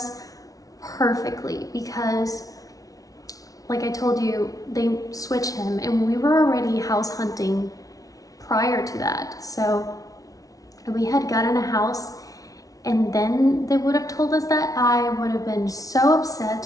perfectly, because like I told you, they switched him and we were already house hunting prior to that. So we had gotten a house and then they would have told us that, I would have been so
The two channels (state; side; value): late; right; 0.18 ms